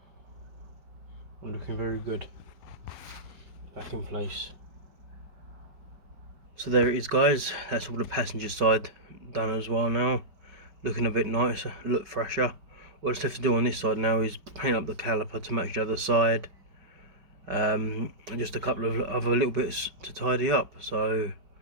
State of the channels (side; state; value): left; late; 4.9 ms